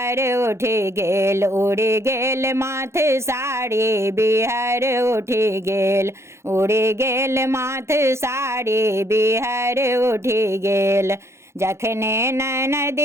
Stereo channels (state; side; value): late; left; 0.13 ms